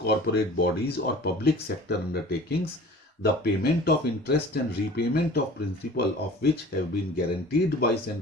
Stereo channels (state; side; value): normal; both; correlation 0.44